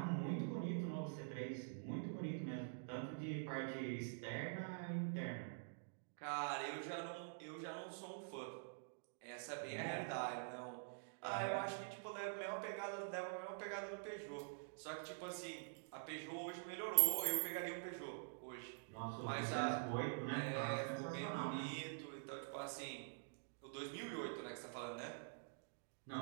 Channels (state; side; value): silent; left; digital silence